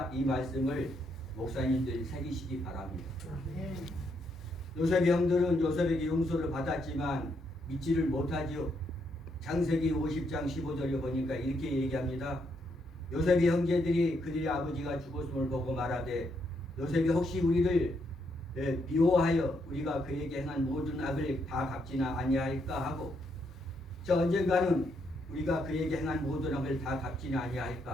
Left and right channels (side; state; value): both; normal; correlation 0.76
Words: 이 말씀을 목사님들이 새기시기 바랍니다. 요셉의 형들은 요셉에게 용서를 받았지만 믿지를 못하지요. 창세기 50장 15절에 보니까 이렇게 얘기합니다. 요셉의 형제들이 그들의 아버지가 죽었음을 보고 말하되 요셉이 혹시 우리를 미워하여 우리가 그에게 행한 모든 악을 다 갚지나 아니할까 하고, 저 언젠가는 우리가 그에게 행한 모든 악을 다 갚지나